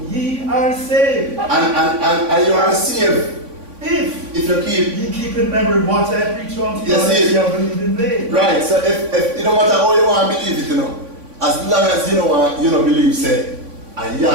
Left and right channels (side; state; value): left; late; 3.5 ms